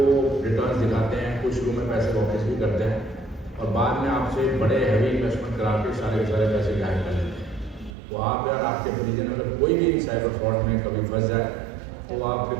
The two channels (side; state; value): left; drops out; at 8.0 s